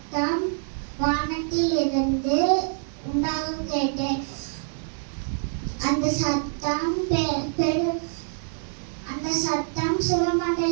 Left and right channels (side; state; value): left; silent; 61 dB below the other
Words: வானத்தில் இருந்து உண்டாக கேட்டேன். அந்த சத்தம்